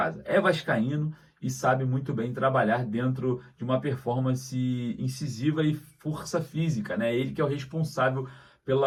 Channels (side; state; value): both; identical; correlation 1.00